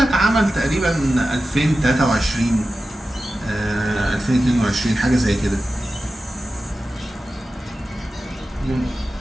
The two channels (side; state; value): both; normal; correlation 0.93